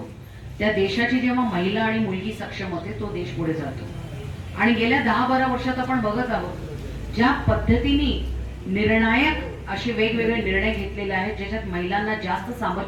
त्या देशाची जेव्हा महिला आणि मुलगी सक्षम होते तो देश पुढे जातो। आणि गेल्या 10-12 वर्षात आपण बघत आहोत ज्या पद्धतीने निर्णायक असे वेगवेगळे निर्णय घेतलेले आहेत ज्याच्यात महिलांना जास्त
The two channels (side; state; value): both; identical; correlation 1.00